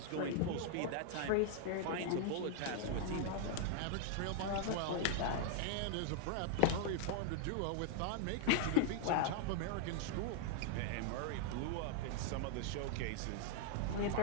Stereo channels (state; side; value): different; both; correlation -0.01